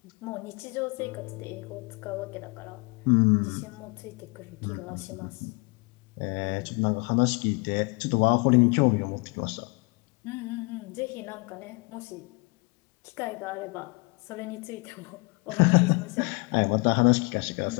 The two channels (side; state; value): right; quieter; 29.9 dB